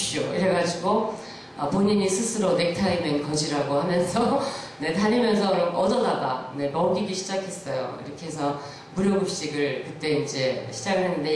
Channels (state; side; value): identical; both; correlation 1.00